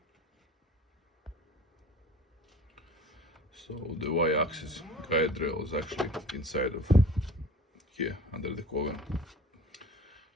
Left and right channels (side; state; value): both; normal; correlation 0.43